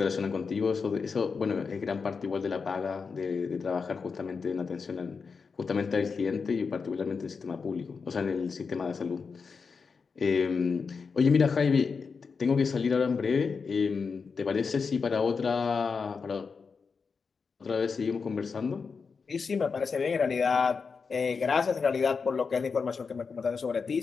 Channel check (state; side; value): quieter; right; 5.2 dB